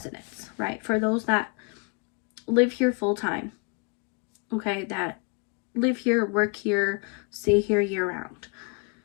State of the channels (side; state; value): right; quieter; 32.6 dB